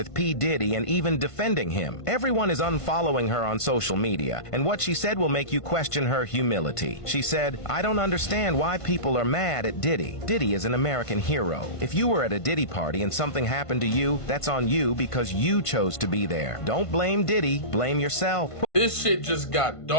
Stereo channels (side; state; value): right; late; 1.5 ms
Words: P. Diddy and even defending him. Everyone is unfollowing her on social media, and what she said will make you question her humility. She said, "I don't understand why people are mad at Diddy. Diddy is an American hero. If you were at a Diddy party and something happened to you, that's on you because you chose to be there. Don't blame Diddy, blame yourself." This shit just got